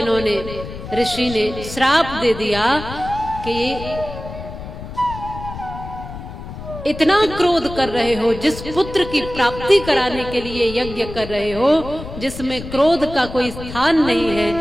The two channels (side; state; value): left; noise; rumble, 11 dB below the sound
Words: ऋषि ने श्राप दे दिया कि इतना क्रोध कर रहे हो, जिस पुत्र की प्राप्ति कराने के लिए यज्ञ कर रहे हो, जिसमें क्रोध का कोई स्थान नहीं है,